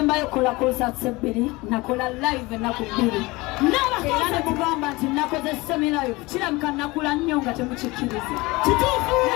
kola concert ebbiri nakola live ennaku bbiri era ne mugamba nti nakoze semi-live kiramuka nakula nnyo nga temukikkiriza kituufu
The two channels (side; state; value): right; quieter; 22.4 dB